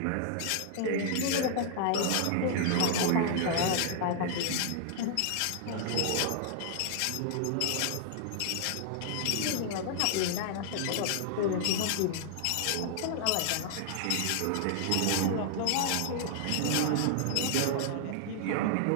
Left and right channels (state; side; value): different; both; correlation 0.00